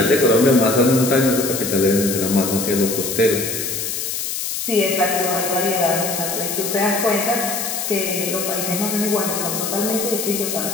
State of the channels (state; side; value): noise; left; hiss, 3 dB below the sound